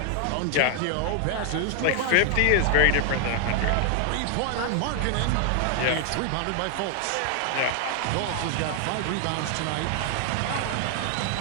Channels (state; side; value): different; both; correlation 0.00